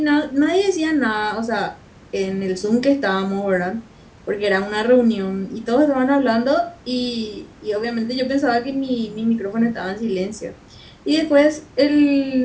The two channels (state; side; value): identical; both; correlation 1.00